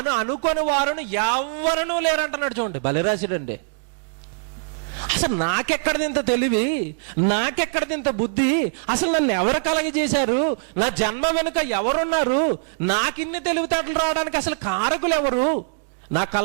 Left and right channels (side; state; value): left; silent; digital silence